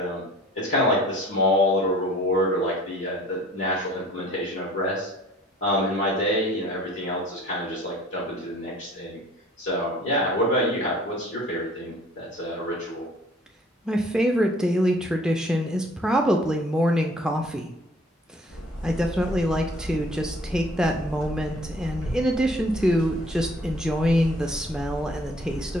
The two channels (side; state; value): both; normal; correlation 0.53